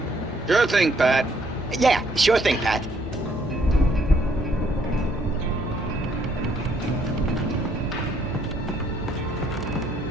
Sure thing, Pat. Yeah, sure thing, Pat.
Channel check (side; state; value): both; normal; correlation 0.68